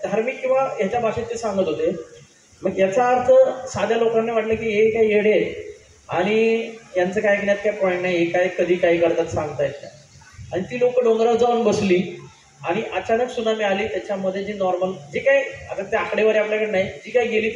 धार्मिक किंवा ह्याच्या भाषेत ते सांगत होते. मग याचा अर्थ साध्या लोकांना वाटलं की हे काही येडे आहे आणि यांचं काय ऐकण्यात काय पॉईंट नाही, हे काय कधी काय करतात सांगता येत नाही. आणि ती लोक डोंगरावर जाऊन बसली आणि अचानक सुनामी आली. त्याच्यामध्ये जी नॉर्मल जे काही आता ते आकडेवारी आपल्याकडे नाही, जी काही गेली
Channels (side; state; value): both; identical; correlation 1.00